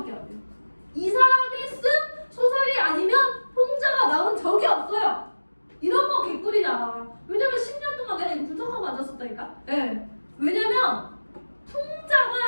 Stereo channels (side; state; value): both; inverted; correlation -1.00